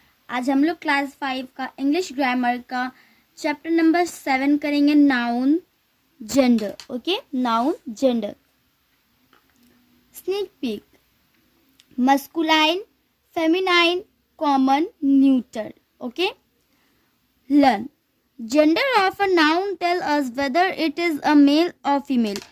आज हम लोग क्लास 5 का इंग्लिश ग्रामर का चैप्टर नंबर 7 करेंगे, noun gender. Okay, noun gender. Sneak peek, masculine, feminine, common, neuter. Okay, learn gender of a noun tell us whether it is a male और female.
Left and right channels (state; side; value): identical; both; correlation 1.00